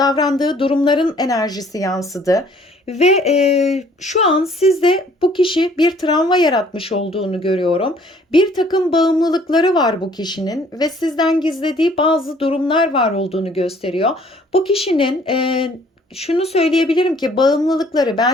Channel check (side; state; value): both; normal; correlation 0.58